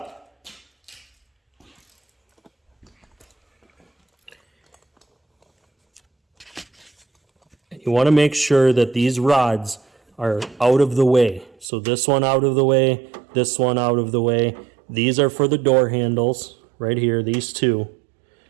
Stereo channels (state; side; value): drops out; left; at 11.7 s